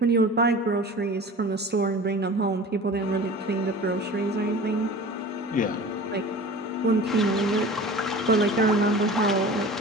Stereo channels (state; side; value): normal; both; correlation 0.38